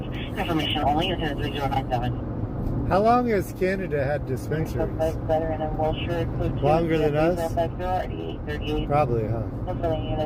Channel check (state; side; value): identical; both; correlation 1.00